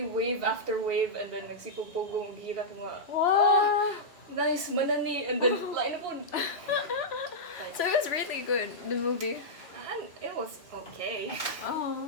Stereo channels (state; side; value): normal; both; correlation -0.10